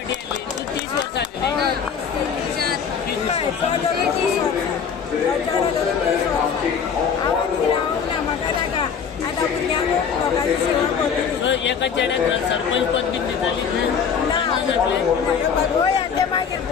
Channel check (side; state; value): right; quieter; 6.8 dB